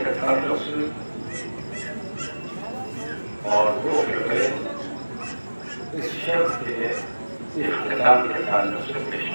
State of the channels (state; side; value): inverted; both; correlation -1.00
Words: کے تعلق سے اور دو شبے اس شب کے اختتام کے تعلق سے پیش